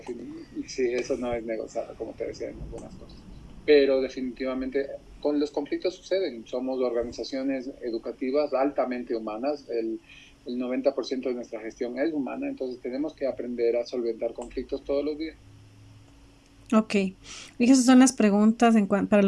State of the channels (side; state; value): both; identical; correlation 1.00